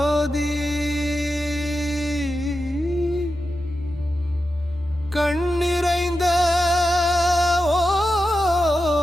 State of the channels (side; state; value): both; normal; correlation 0.90